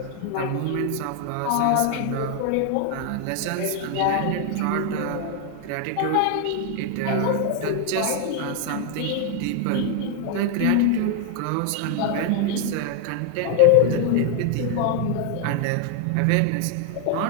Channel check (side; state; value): both; different; correlation 0.00